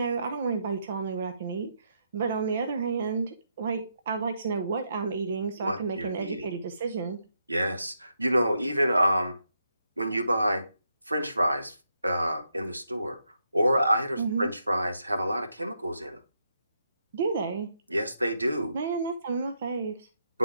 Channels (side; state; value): both; inverted; correlation -0.80